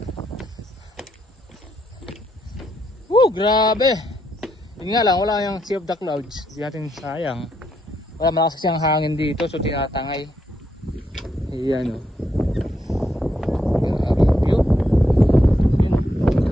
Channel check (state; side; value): normal; both; correlation 0.78